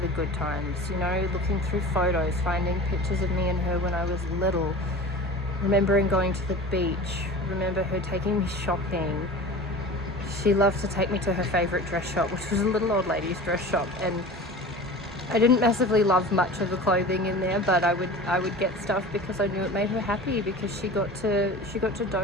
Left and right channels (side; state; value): both; normal; correlation 0.36